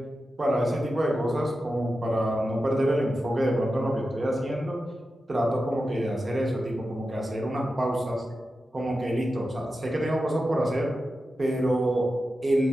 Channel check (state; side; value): normal; both; correlation 0.91